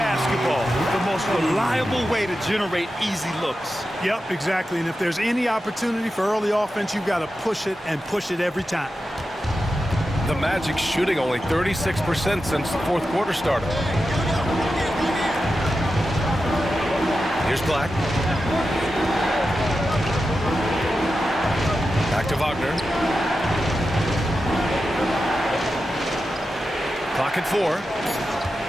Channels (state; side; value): normal; both; correlation 0.91